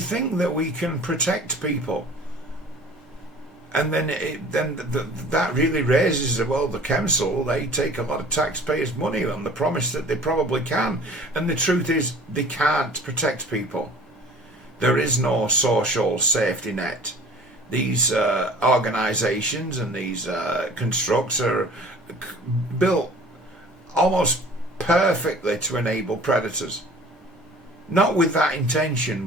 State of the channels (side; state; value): both; normal; correlation 0.47